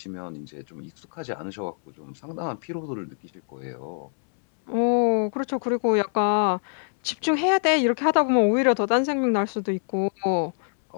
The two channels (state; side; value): silent; right; 62 dB below the other